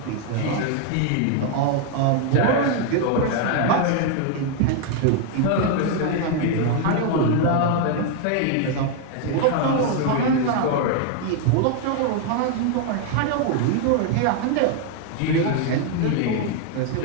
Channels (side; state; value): both; different; correlation 0.00